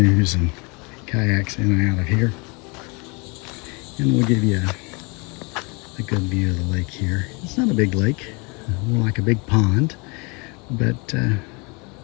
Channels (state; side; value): quieter; right; 30.1 dB